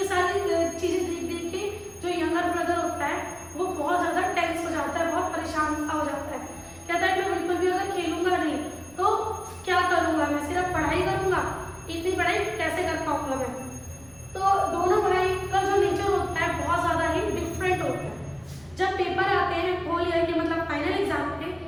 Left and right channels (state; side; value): noise; right; rumble, 27 dB below the sound